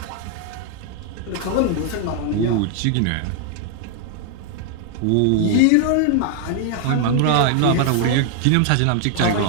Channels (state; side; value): different; both; correlation 0.00